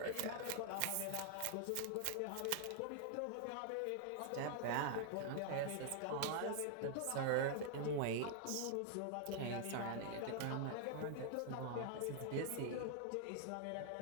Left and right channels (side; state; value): both; different; correlation 0.00